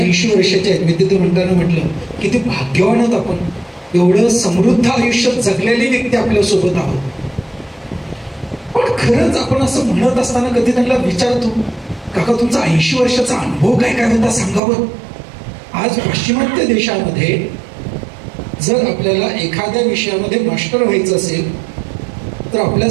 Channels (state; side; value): drops out; left; at 14.6 s